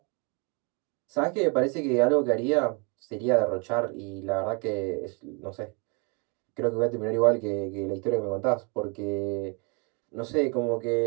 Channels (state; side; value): quieter; left; 33.4 dB